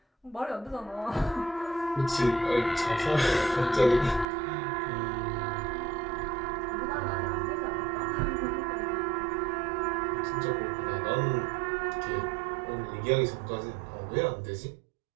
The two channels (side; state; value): left; drops out; at 4.2 s